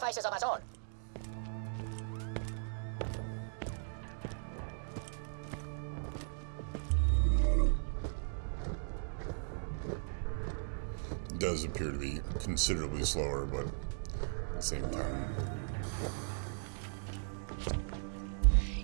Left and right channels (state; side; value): silent; left; digital silence